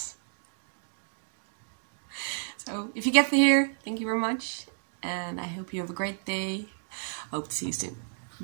So, if you get here, thank you very much. And I hope you have a great day. Hope to see you soon.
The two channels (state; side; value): silent; left; digital silence